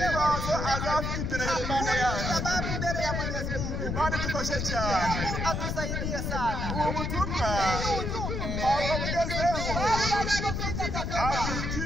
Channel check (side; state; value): left; noise; rumble, 2 dB below the sound